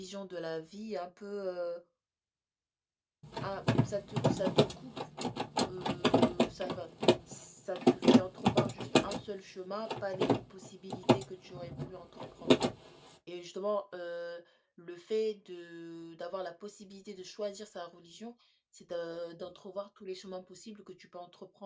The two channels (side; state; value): both; identical; correlation 1.00